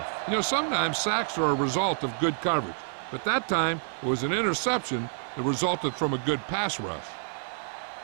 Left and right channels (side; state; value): left; silent; 59 dB below the other